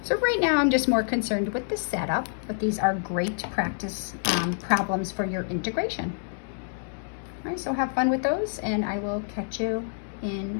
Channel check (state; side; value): silent; right; digital silence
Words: So right now I'm just more concerned with the setup, but these are great practice problems for your integration. All right, so have fun with those, and I will catch you